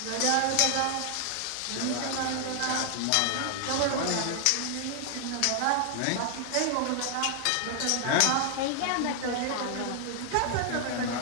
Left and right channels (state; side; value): different; both; correlation 0.00